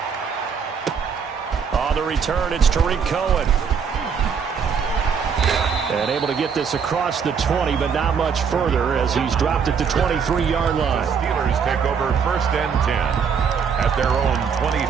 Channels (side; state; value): left; quieter; 6.5 dB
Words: On the return, it's Tariq Cohen. And able to get this across the 20, but not much further as he's dropped at the 23-yard line. The Steelers take over 1st and 10 at their own